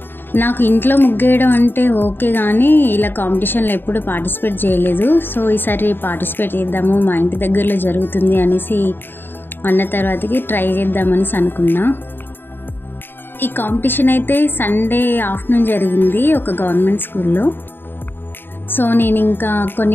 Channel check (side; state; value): right; late; 0.097 ms